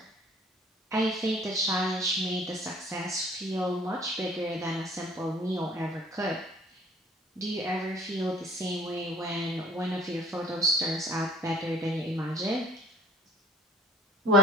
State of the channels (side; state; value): both; normal; correlation 0.51